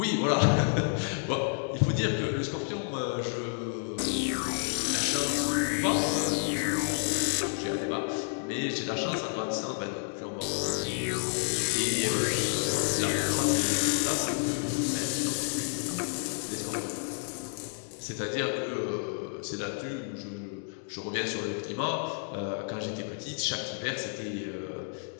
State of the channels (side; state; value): right; silent; 58 dB below the other